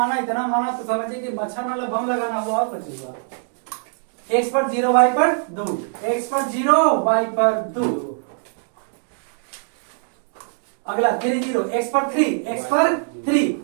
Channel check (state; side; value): silent; left; digital silence